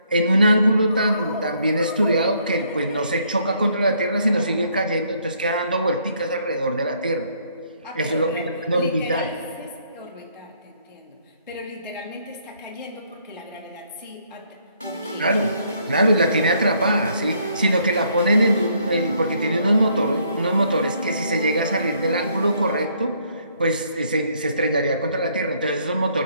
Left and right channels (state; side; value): inverted; both; correlation -0.68